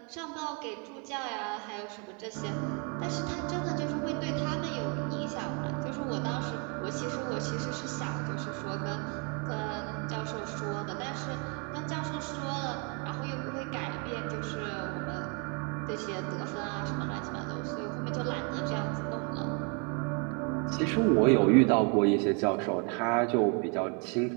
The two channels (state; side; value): quieter; left; 35.4 dB